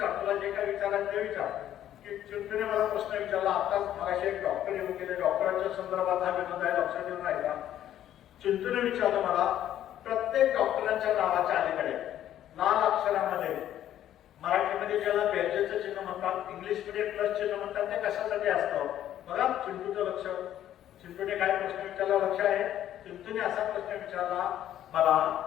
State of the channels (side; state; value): right; quieter; 11.6 dB